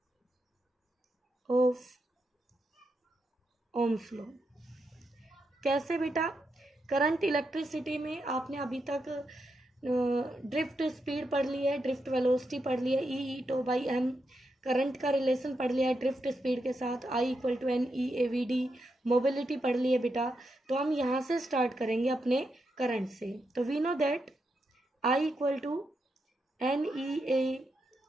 ऑफ ओम्स लॉ। कैसे बेटा? करंट इलेक्ट्रिसिटी में आपने अभी तक ड्रिफ्ट स्पीड पढ़ ली है, ड्रिफ्ट वेलोसिटी पढ़ ली है EE/m। करंट का रिलेशन पढ़ लिया है ड्रिफ्ट स्पीड के साथ I = NEAVD। मोबिलिटी पढ़ ली है बेटा। तो हम यहाँ से स्टार्ट करेंगे अपने करंट से। तो we know that I = NEAVD।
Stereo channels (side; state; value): both; normal; correlation 0.84